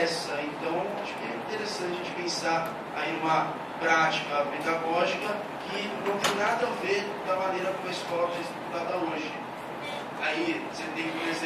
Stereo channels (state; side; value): identical; both; correlation 1.00